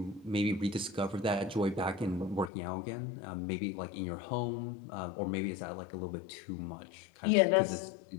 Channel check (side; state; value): right; drops out; at 2.5 s